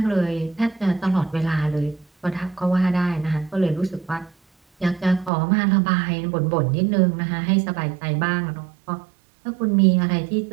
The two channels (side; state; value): left; drops out; at 5.3 s